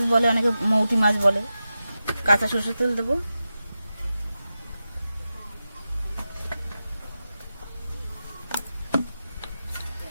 বলে, অনেকে মৌটি মাছ বলে। কাঁচা সরষের তেল দেবো।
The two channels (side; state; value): both; inverted; correlation -0.92